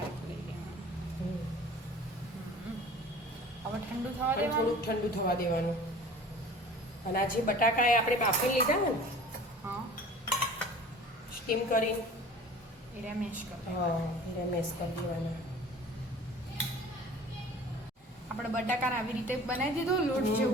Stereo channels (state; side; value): normal; both; correlation 0.44